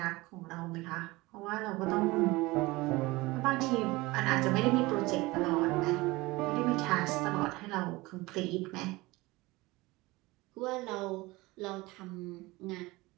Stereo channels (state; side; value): quieter; left; 21.3 dB